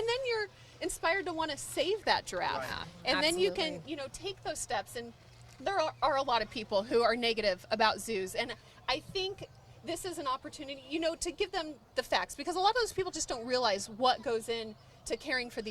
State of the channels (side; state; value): both; identical; correlation 1.00